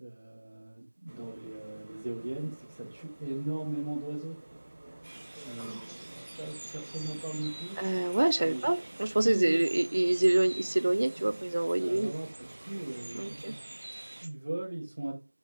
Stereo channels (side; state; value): both; inverted; correlation -1.00